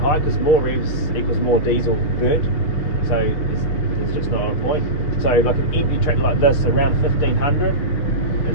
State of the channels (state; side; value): late; right; 6.1 ms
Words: because more revs equals more diesel burnt. So there's just not a point. So like an empty tractor like this, around 1500